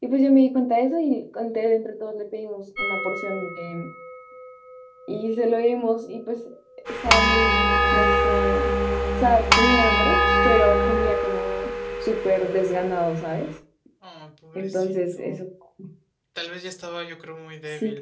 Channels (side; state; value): both; identical; correlation 1.00